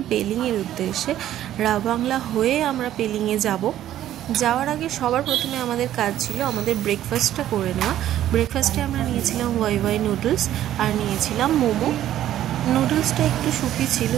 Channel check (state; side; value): quieter; left; 12.3 dB